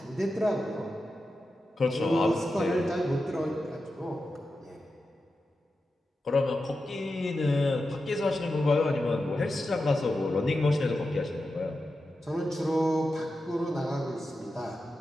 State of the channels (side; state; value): both; normal; correlation 0.90